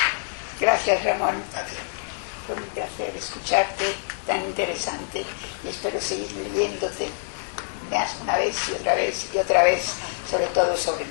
Gracias, Ramón. A ti. Fue un placer escucharte, tan interesante, y espero seguir leyéndote más una vez y otra vez, sobre todo sobre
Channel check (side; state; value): right; silent; digital silence